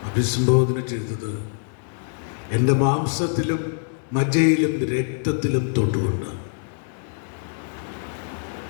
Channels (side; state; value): right; silent; digital silence